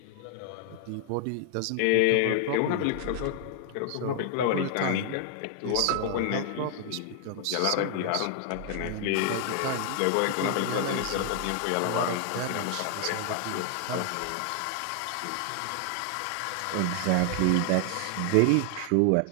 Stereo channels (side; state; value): both; different; correlation 0.00